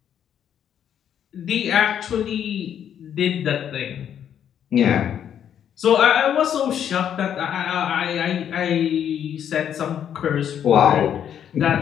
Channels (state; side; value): quieter; right; 9.3 dB